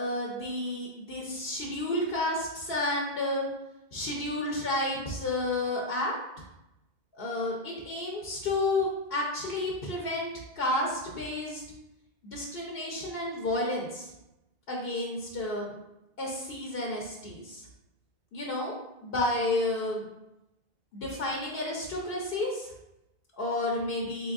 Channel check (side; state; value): right; late; 2.5 ms